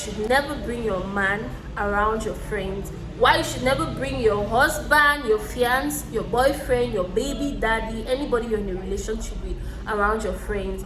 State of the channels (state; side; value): identical; both; correlation 1.00